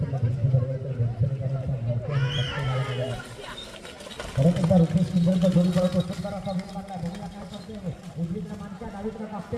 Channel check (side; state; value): both; identical; correlation 1.00